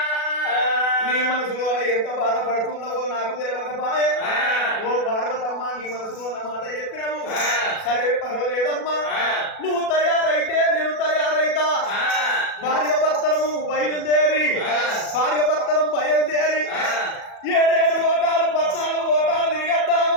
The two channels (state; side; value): late; right; 37 ms